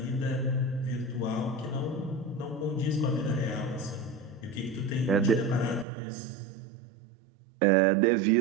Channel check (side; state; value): left; drops out; at 5.9 s